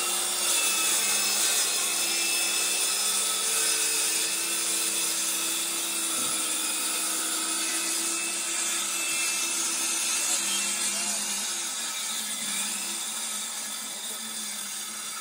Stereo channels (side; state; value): both; identical; correlation 1.00